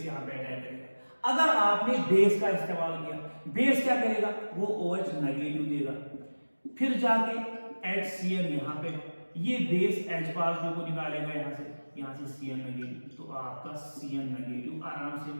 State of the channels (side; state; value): both; inverted; correlation -1.00